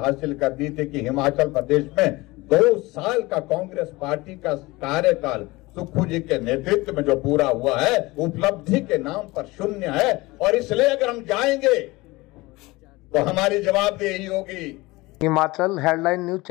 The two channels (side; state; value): right; quieter; 21.5 dB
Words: कर दी थी कि हिमाचल प्रदेश में 2 साल का कांग्रेस पार्टी का कार्यकाल सुक्खू जी के नेतृत्व में जो पूरा हुआ है, उपलब्धि के नाम पर शून्य है। और इसलिए अगर हम जाएंगे तो हमारी जवाबदेही होगी। हिमाचल हेडलाइन न्यूज